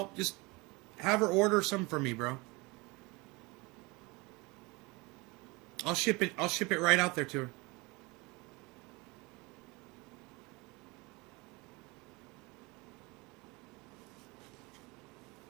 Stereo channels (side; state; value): left; quieter; 25.4 dB